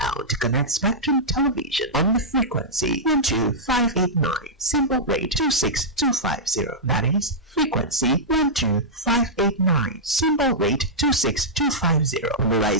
to connect Spectrum Television on the frequency 12589, symbol rate 26250. That is frequency 12589, symbol rate 26250.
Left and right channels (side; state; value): both; normal; correlation -0.11